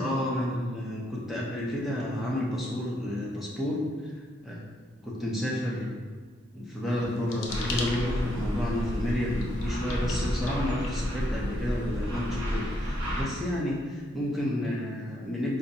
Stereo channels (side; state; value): both; normal; correlation 0.75